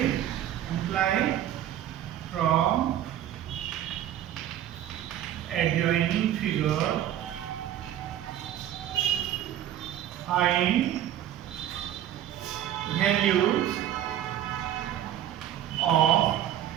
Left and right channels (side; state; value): left; quieter; 11.6 dB